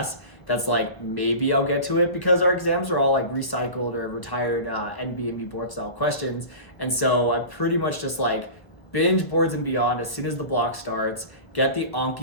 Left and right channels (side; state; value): right; late; 1.2 ms